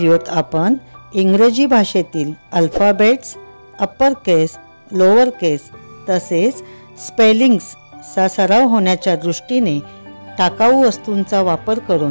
आपण इंग्रजी भाषेतील अल्फाबेट्स, अप्पर केस, लोअर केस तसेच स्पेलिंग्सचा सराव होण्याच्या दृष्टीने टाकाऊ वस्तूंचा वापर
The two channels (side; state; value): both; inverted; correlation -1.00